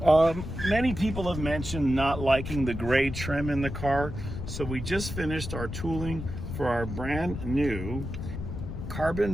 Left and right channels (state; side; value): noise; left; rumble, 7 dB below the sound